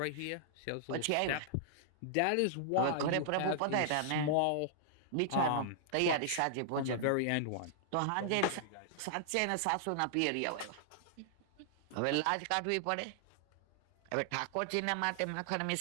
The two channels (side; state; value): both; different; correlation -0.01